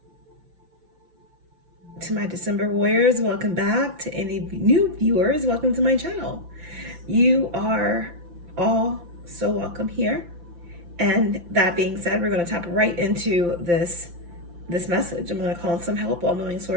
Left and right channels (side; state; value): left; late; 5.8 ms